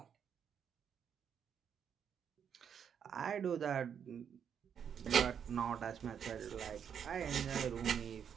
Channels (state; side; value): quieter; left; 7.9 dB